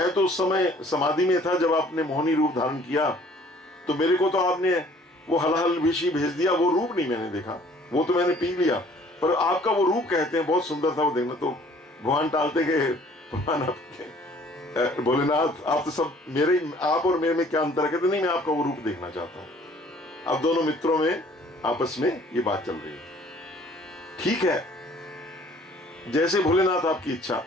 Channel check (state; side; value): normal; both; correlation 0.56